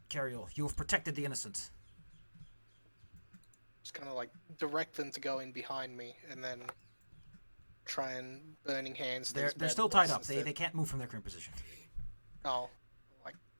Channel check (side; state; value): both; inverted; correlation -1.00